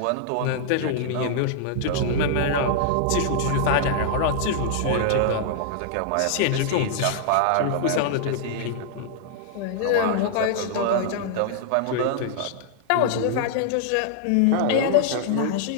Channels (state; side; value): different; both; correlation -0.01